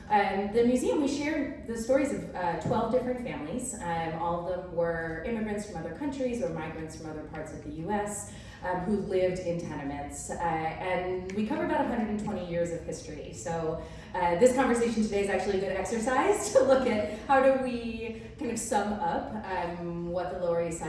the museum, we share the stories of 12 different families. All of them were immigrants from other countries or migrants from other parts of the US who lived in tenements. And we cover about 120 years of history. So this conversation today is actually a good exercise to look at how do we kind of sum up what the Lower East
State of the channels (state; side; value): identical; both; correlation 1.00